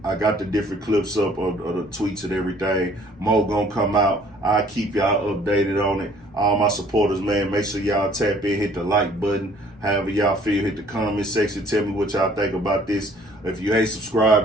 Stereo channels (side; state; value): both; normal; correlation 0.57